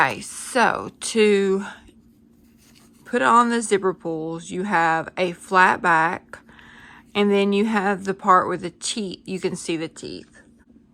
so to put on the zipper pulls, you have a flat back, and then you have the part with the teeth. You can see the teeth.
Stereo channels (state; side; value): identical; both; correlation 1.00